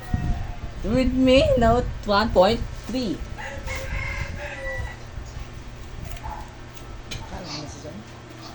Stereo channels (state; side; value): identical; both; correlation 1.00